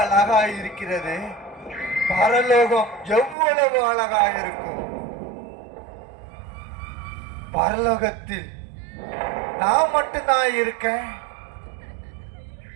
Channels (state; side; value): drops out; left; at 3.4 s